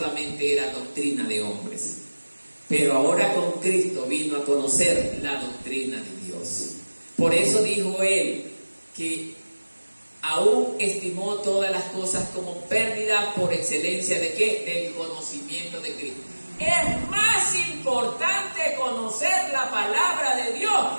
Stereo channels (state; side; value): inverted; both; correlation -1.00